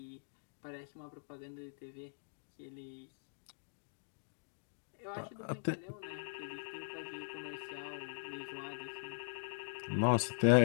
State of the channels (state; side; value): silent; right; digital silence